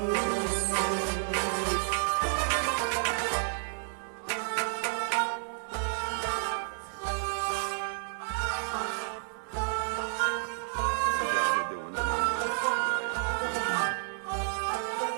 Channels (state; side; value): silent; left; 57 dB below the other